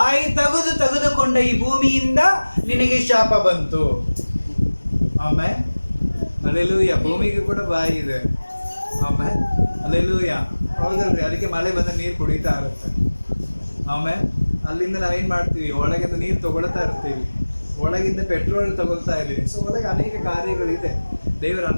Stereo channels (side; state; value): both; inverted; correlation -1.00